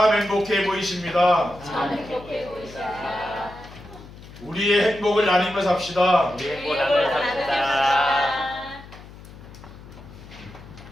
행복해 보이십니다. 참 행복해 보이시다. 우리의 행복을 나누며 삽시다. 행복 나눠 삽시다.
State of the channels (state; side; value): noise; left; hum, 18 dB below the sound